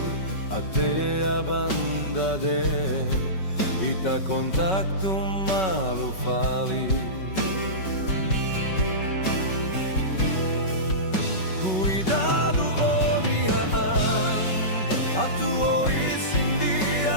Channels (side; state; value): right; late; 5.3 ms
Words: até a banda de ita contacto malo fali. Cuidado oniaan atuo